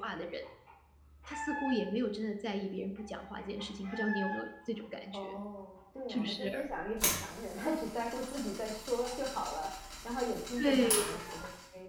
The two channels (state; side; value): identical; both; correlation 1.00